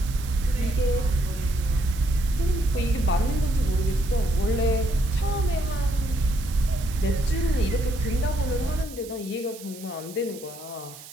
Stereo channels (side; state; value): right; noise; hiss, 17 dB below the sound